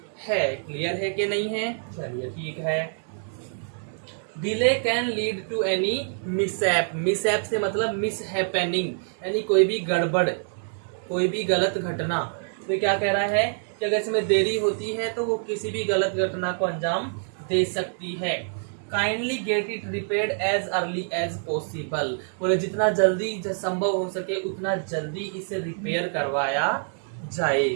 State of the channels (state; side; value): silent; left; 61 dB below the other